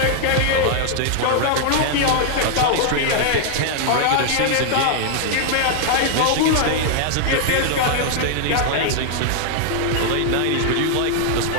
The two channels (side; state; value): both; different; correlation 0.00